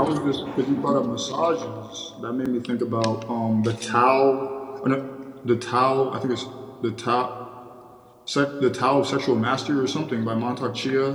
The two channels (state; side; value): identical; both; correlation 1.00